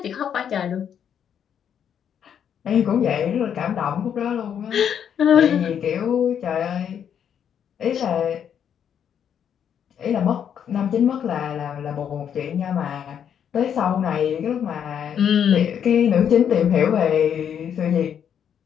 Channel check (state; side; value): quieter; right; 8.5 dB